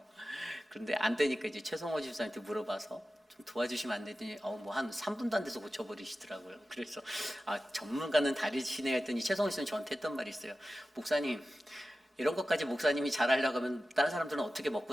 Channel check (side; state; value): both; normal; correlation 0.94